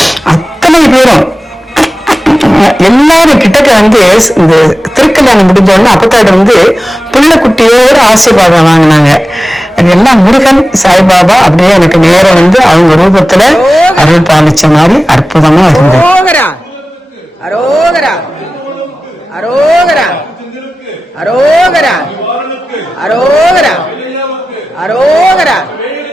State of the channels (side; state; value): both; normal; correlation 0.95